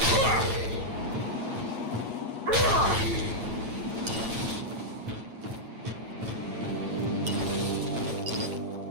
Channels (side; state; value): left; late; 9.0 ms